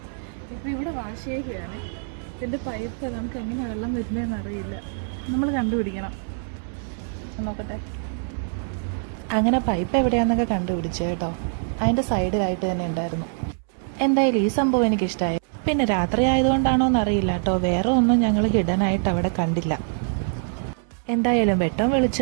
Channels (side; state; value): left; silent; 62 dB below the other